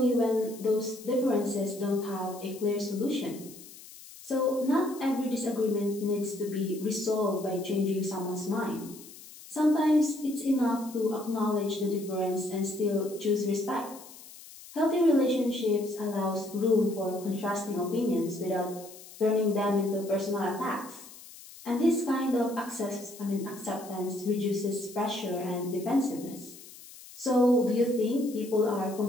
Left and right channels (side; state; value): left; noise; hiss, 18 dB below the sound